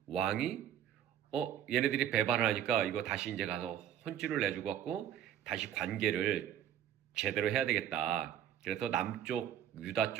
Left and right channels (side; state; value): left; quieter; 10.4 dB